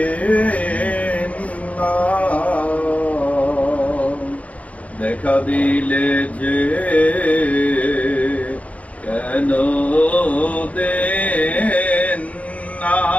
না, দেখা দিলে যে কেন দেন না,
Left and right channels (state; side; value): late; right; 0.067 ms